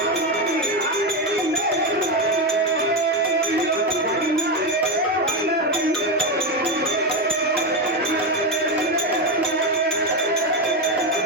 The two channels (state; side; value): normal; both; correlation 0.12